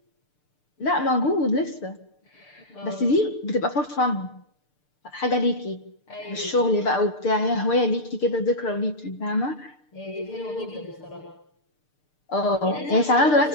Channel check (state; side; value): late; right; 6.7 ms